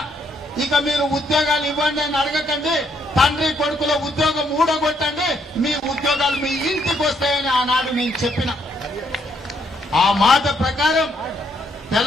ఇక మీరు ఉద్యోగాలు ఇవ్వండి అని అడగకండి, తండ్రి కొడుకుల ఉద్యోగం ఊడగొట్టండి, మీ ఉద్యోగాలు మీ ఇంటికి వస్తాయని ఆనాడు నేను చెప్పిన. ఆ మాట ప్రకారం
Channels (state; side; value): normal; both; correlation 0.72